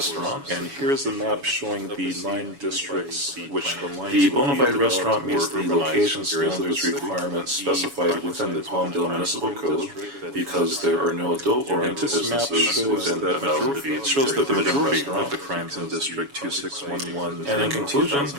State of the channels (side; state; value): left; late; 7.1 ms